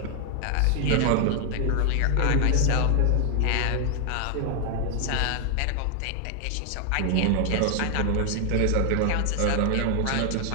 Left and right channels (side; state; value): both; different; correlation 0.00